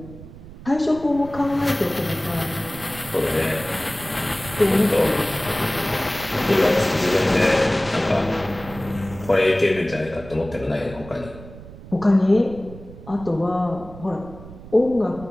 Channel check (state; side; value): noise; right; rumble, 16 dB below the sound